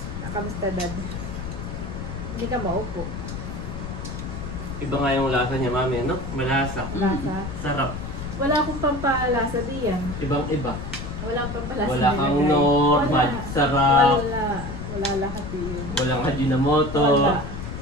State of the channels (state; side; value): noise; left; rumble, 7 dB below the sound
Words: Kamusta, Dad? Hindi ka maupo. Iba nga yung lasa niya, mami, no? Malasa. Lasa. Sarap. Wala akong pampalasa diyan. Ibang-iba. Wala akong pampalasa. Wala kang nilagay. normal. Sarap. Wala lahat yun. Walang Ajinomoto. Wala.